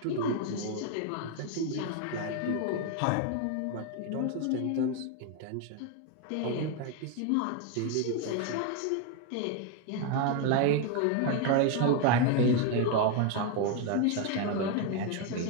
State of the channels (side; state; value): both; different; correlation 0.01